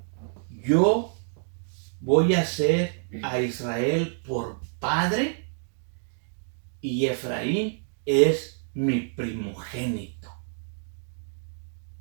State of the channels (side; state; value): left; silent; digital silence